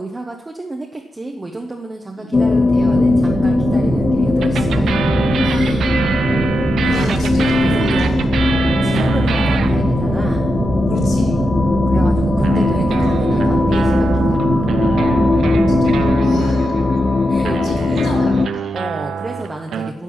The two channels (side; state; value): both; normal; correlation 0.87